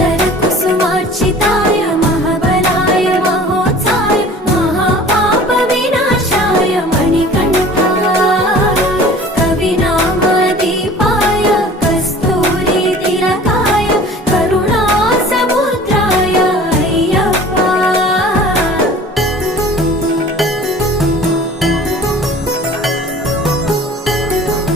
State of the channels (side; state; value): both; normal; correlation 0.45